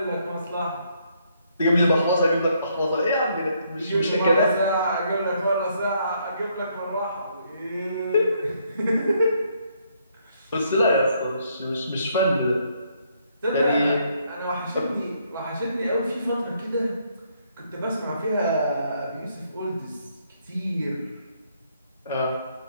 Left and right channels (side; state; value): both; inverted; correlation -0.71